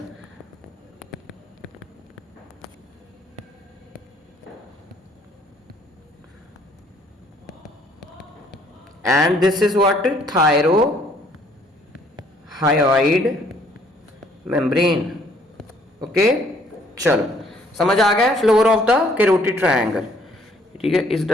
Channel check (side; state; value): both; normal; correlation 0.62